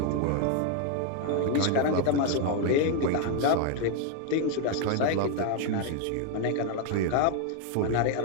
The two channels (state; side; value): different; both; correlation 0.01